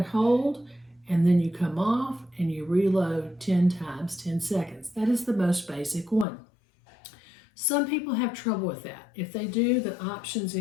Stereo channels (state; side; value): drops out; right; at 6.2 s